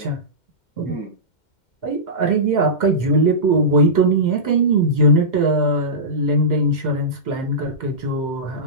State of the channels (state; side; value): late; right; 2.1 ms